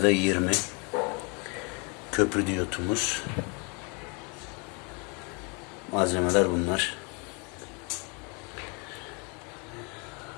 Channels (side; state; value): right; quieter; 32.4 dB